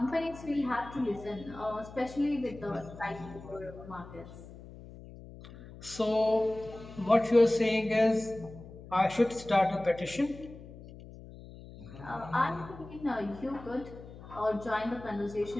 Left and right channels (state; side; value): noise; left; hum, 16 dB below the sound